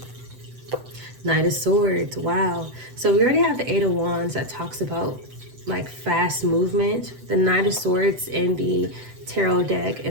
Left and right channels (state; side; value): late; left; 7.9 ms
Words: Knight of Swords. Wow. So we already have the Eight of Wands that talks about like fast movement. The Knight of Swords in the tarot deck